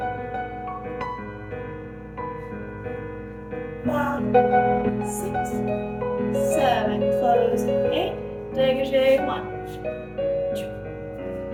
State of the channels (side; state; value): both; identical; correlation 1.00